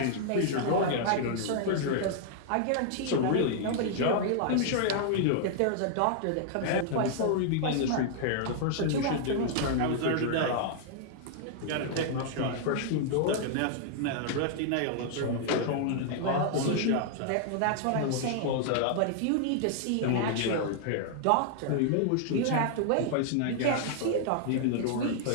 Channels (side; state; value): both; different; correlation -0.01